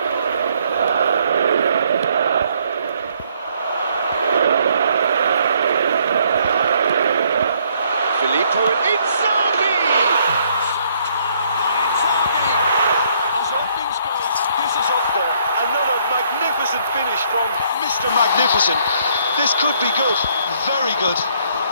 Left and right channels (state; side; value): inverted; both; correlation -0.66